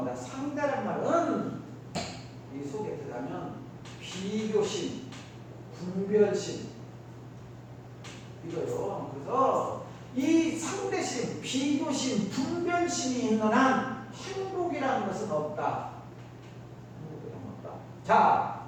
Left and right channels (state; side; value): identical; both; correlation 1.00